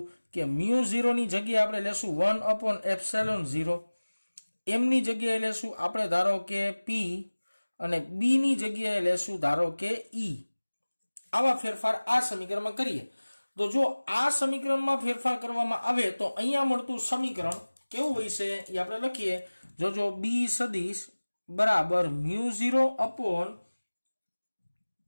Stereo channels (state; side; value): inverted; both; correlation -1.00